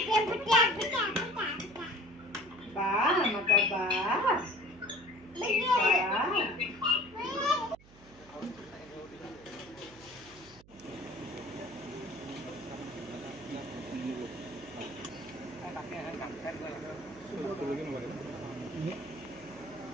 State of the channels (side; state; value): right; noise; hum, 23 dB below the sound